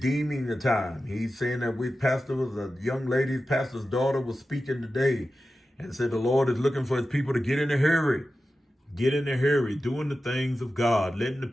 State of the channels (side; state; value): both; normal; correlation 0.93